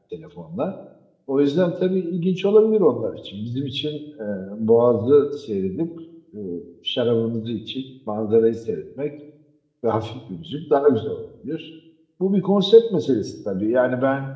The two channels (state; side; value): identical; both; correlation 1.00